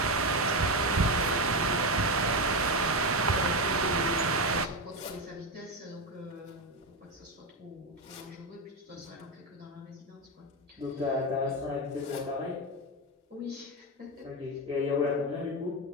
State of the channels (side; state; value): both; normal; correlation 0.12